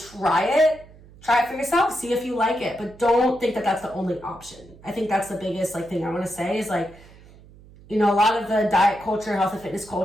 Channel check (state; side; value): noise; right; hum, 23 dB below the sound